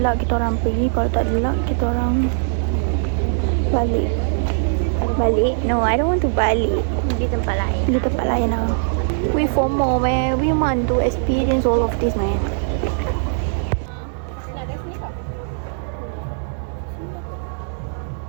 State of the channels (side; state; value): left; silent; digital silence